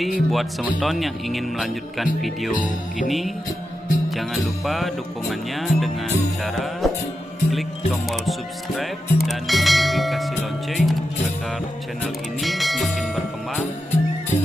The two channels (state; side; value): normal; both; correlation 0.89